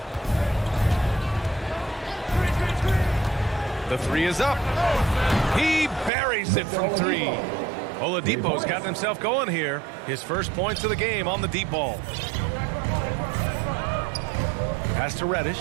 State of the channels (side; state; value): left; drops out; at 6.1 s